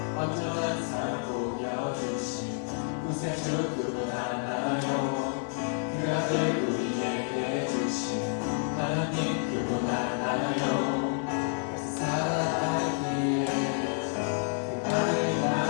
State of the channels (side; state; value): right; silent; 58 dB below the other